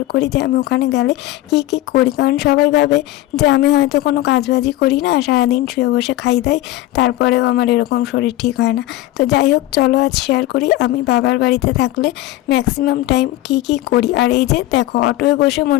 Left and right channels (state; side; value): quieter; right; 16.1 dB